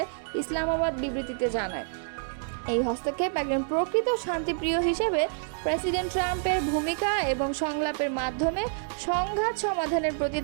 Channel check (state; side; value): silent; left; digital silence